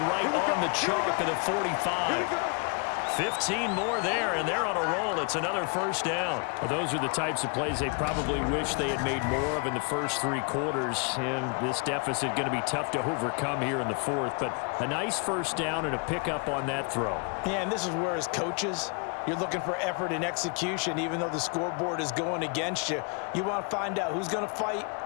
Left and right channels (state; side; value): quieter; right; 35.1 dB